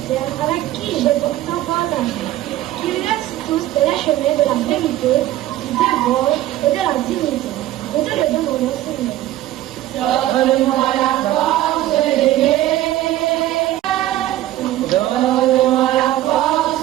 avec qui j'ai pourtant partagé. Qu'ils restent tous sur les chemins de la vérité, du devoir et de la dignité. Nous te le demandons, Seigneur. Donne-moi la force d'aimer. Donne-moi la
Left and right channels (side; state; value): left; quieter; 14.3 dB